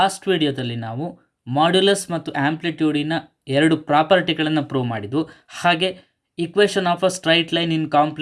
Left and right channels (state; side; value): identical; both; correlation 1.00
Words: ವಿಡಿಯೋದಲ್ಲಿ ನಾವು modulus ಮತ್ತು ಆಂಪ್ಲಿಟ್ಯೂಡಿನ ಎರಡು ಪ್ರಾಪರ್ಟಿಗಳನ್ನು ಪ್ರೂವ್ ಮಾಡಿದ್ವು. ಹಾಗೆ equation of a straight line in